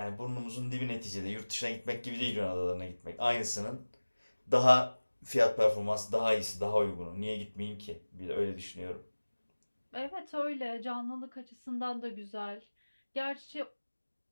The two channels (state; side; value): inverted; both; correlation -1.00